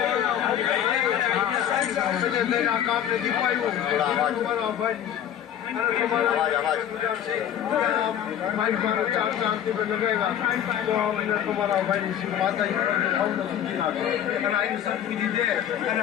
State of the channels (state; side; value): quieter; right; 10.0 dB